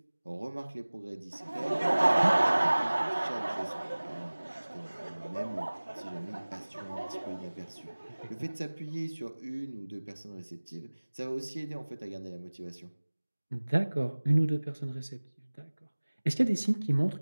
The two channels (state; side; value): inverted; both; correlation -1.00